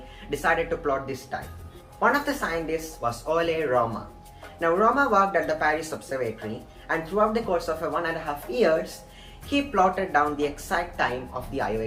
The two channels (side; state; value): both; identical; correlation 1.00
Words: decided to plot this time. One of the scientists was Ole Rømer. Now Rømer worked at the Paris Observatory, and throughout the course of 1.5 years, he plotted down the exact time of the Io